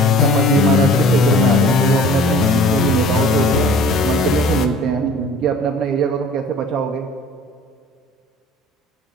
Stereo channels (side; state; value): both; normal; correlation 0.47